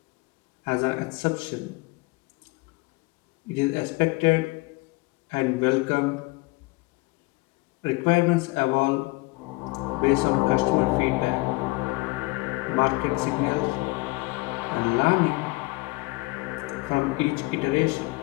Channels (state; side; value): quieter; right; 24.4 dB